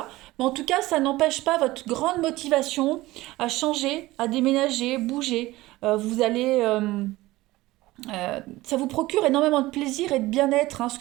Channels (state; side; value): quieter; left; 18.5 dB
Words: Mais en tout cas, ça n'empêche pas votre grande motivation à changer, à déménager, bouger. Ça vous procure énormément de plaisir et de bien-être, hein, ce